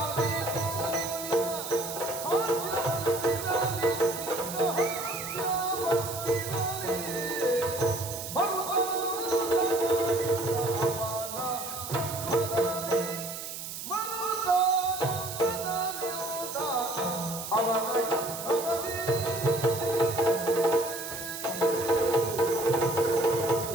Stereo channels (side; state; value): right; noise; hiss, 8 dB below the sound